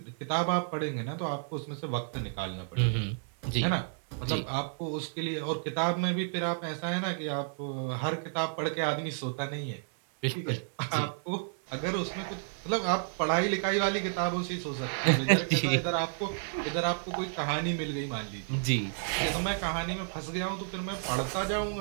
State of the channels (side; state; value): left; silent; 56 dB below the other